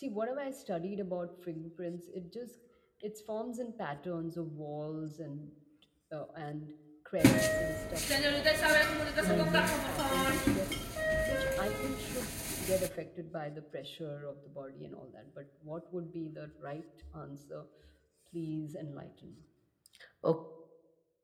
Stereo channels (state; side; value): identical; both; correlation 1.00